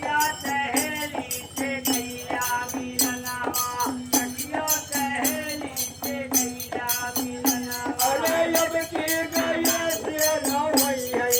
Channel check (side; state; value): both; identical; correlation 1.00